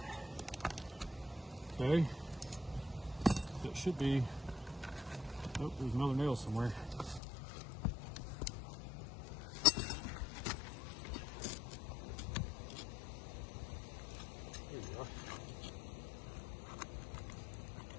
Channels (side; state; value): right; drops out; at 7.2 s